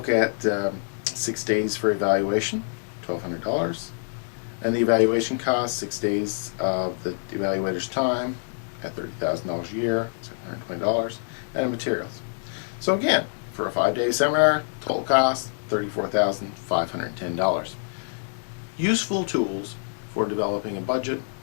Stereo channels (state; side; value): silent; right; digital silence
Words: at 6 days for evaluation, $1,200. And the evaluation cost, 6 days of the evaluator's time at $30,000 a year, $720, and materials. So again, for a 5-day seminar, total cost, $34,510. Useful tools for developing a budget